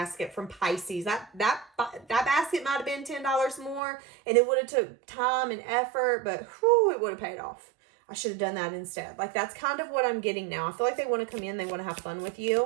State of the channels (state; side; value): drops out; left; at 3.8 s